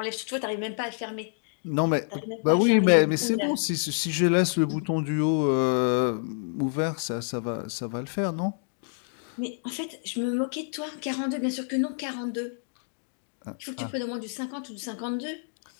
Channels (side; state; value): right; silent; 59 dB below the other